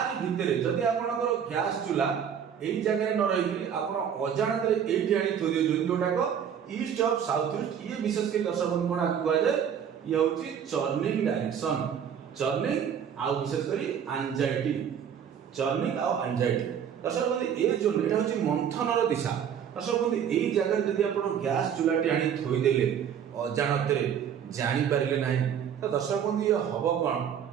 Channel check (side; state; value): left; quieter; 8.3 dB